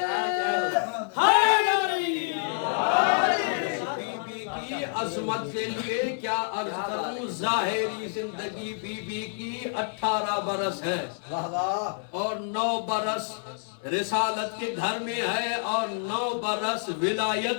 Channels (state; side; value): silent; right; 60 dB below the other